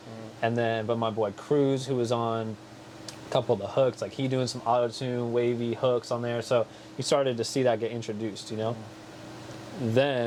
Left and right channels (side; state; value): both; identical; correlation 1.00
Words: And then, but my boy Cruz, who was on a couple of the hooks, like he doing some auto tune, wavy hooks on there. So you started to see that get introduced,